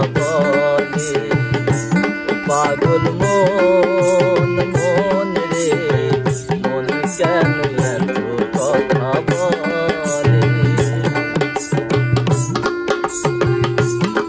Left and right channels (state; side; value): identical; both; correlation 1.00